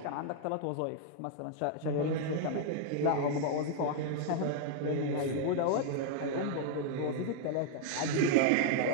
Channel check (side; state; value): both; different; correlation 0.00